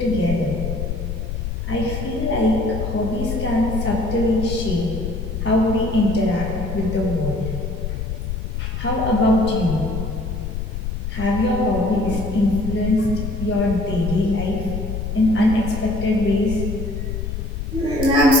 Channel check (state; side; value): noise; left; rumble, 4 dB below the sound